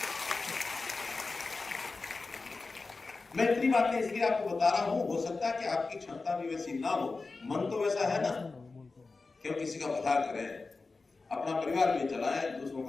मैं इतनी बातें इसलिए आपको बता रहा हूं, हो सकता है कि आपकी क्षमता भी वैसी ना हो, मन तो वैसा है ना, क्यों किसी का भला करें, अपना परिवार भी चलाएं, दूसरों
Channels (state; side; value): quieter; right; 3.9 dB